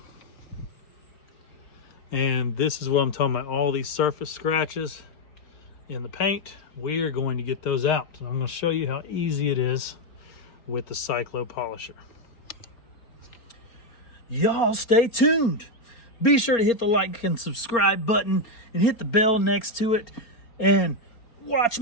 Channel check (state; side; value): late; right; 4.3 ms